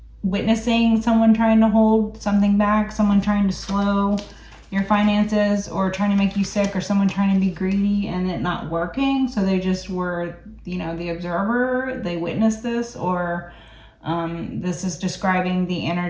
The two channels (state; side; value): identical; both; correlation 1.00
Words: witnessing someone trying to hold something back, someone trying to slow your finances or trying to make you sick, or someone trying to be greedy and it not working. So they just were, you know, the observer. They witnessed this, or this is describing the